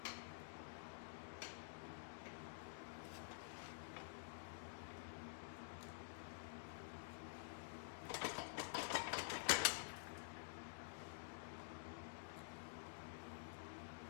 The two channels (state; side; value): silent; right; digital silence